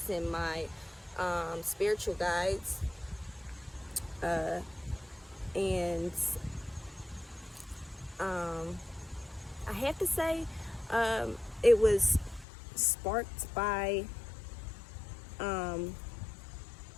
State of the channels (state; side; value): drops out; right; at 12.5 s